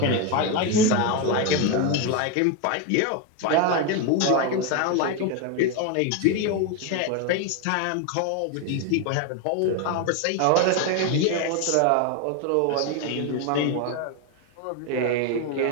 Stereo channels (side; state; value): both; different; correlation 0.02